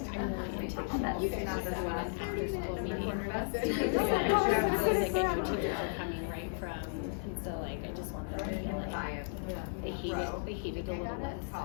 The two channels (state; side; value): silent; right; digital silence